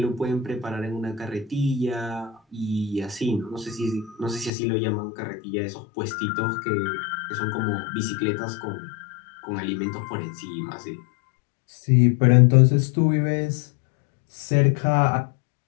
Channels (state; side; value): drops out; right; at 4.5 s